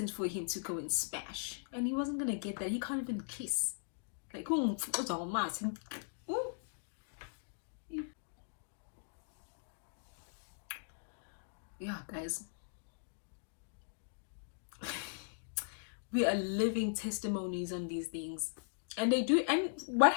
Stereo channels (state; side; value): silent; right; digital silence